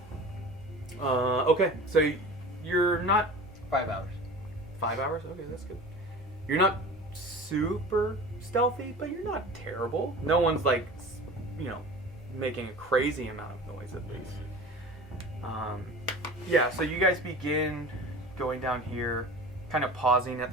Okay, so you're not 5 hours. 5 hours. Okay, that's good. You're not super stealthy, but you're not terrible. No one's like, making a crazy amount of noise at least. Yeah, so you guys begin going down here, kind of pausing at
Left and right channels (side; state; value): both; normal; correlation 0.37